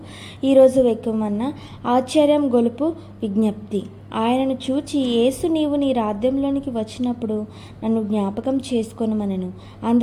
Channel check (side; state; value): both; identical; correlation 1.00